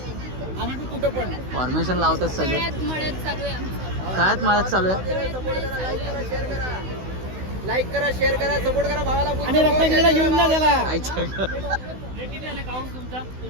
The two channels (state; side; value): late; left; 16 ms